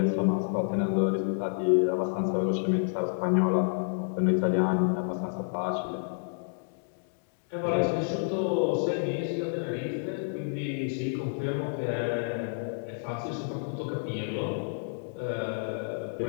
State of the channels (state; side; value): silent; right; digital silence